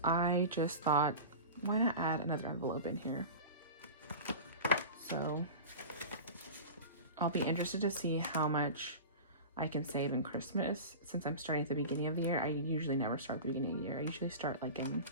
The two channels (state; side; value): inverted; both; correlation -0.31